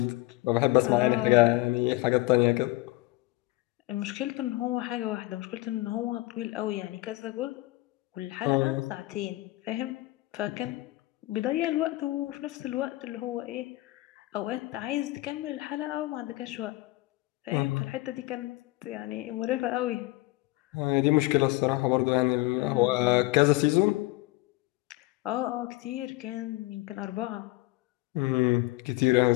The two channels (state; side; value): quieter; right; 20.1 dB